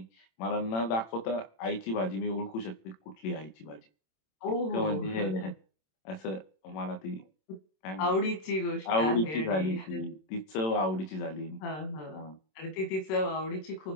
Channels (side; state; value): right; late; 27 ms